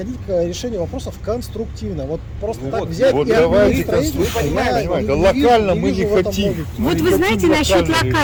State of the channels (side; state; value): both; identical; correlation 1.00